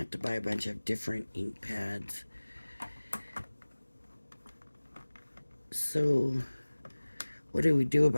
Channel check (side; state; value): both; inverted; correlation -1.00